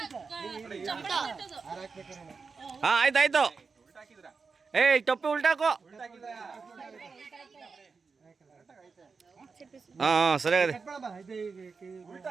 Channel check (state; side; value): quieter; left; 4.9 dB